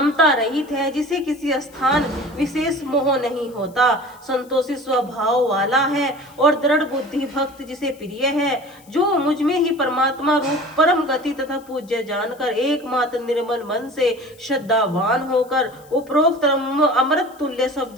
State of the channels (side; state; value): left; noise; hiss, 27 dB below the sound